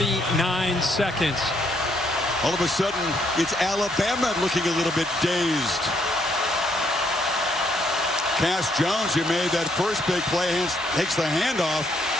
seconds. All of a sudden, it's Alabama looking a little bit dazed. Cass Jones, who made that first big play, takes the handoff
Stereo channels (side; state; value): both; normal; correlation 0.72